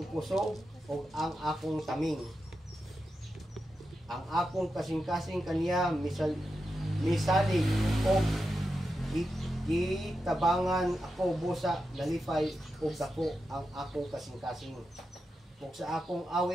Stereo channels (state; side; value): normal; both; correlation 0.89